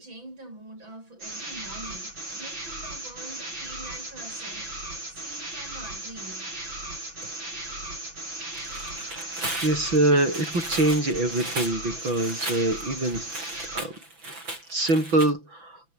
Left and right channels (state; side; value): late; left; 6.0 ms